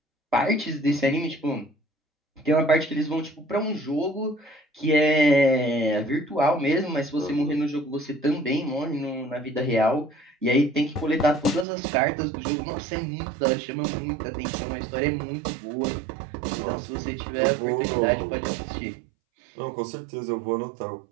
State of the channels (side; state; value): left; drops out; at 11.7 s